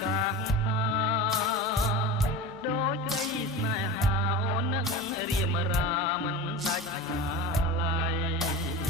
កាសដូចក្តីស្នេហាអូននឹងរៀមរាមិនដាច់អាឡ័យ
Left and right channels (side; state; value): both; normal; correlation 0.30